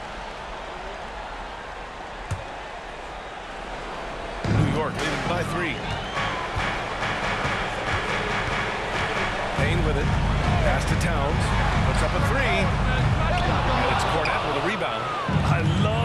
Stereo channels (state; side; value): identical; both; correlation 1.00